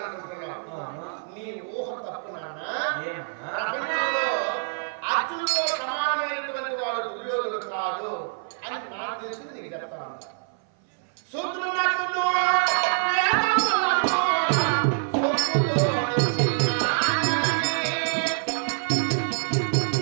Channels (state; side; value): silent; left; 57 dB below the other